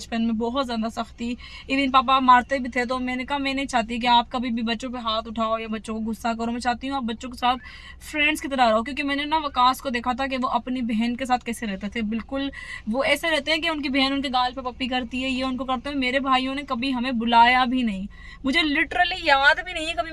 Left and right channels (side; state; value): both; identical; correlation 1.00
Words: में, बहुत ज़्यादा सख्ती। इवन पापा मारते भी थे। तो मैंने कहा मैं नहीं चाहती कि आप कभी भी बच्चों पे हाथ उठाओ या बच्चों को गुस्सा करो। मैं चाहती हूँ आप बच्चों के साथ फ्रेंड्स की तरह रहो। क्योंकि मैंने ना वकास को देखा था कि वो अपनी बहन के साथ कैसे रहते थे। बिल्कुल वो ऐसे रहते हैं कि उनकी बहन उनके गाल पे पप्पी करती है, ये उनको करते हैं। मेरे भाइयों ने कभी हमें बुलाया भी नहीं। मुझे लिटरली याद भी नहीं है कभी